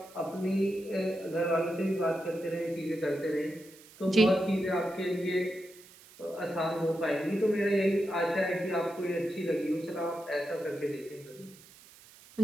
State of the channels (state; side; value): noise; right; hiss, 22 dB below the sound